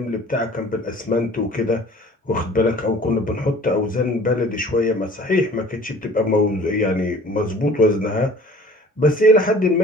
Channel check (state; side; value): normal; both; correlation 0.48